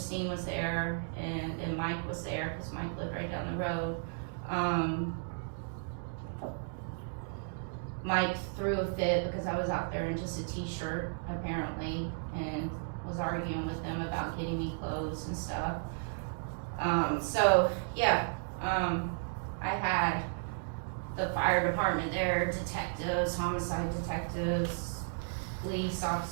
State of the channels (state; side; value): silent; left; digital silence